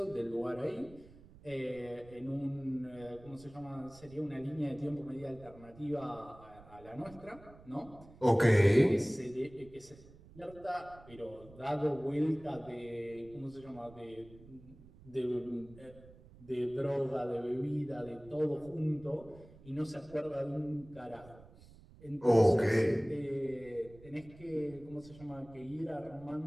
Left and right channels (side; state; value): right; noise; rumble, 21 dB below the sound